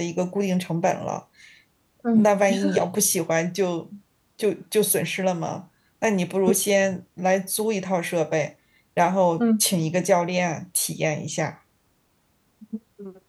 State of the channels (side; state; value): both; identical; correlation 1.00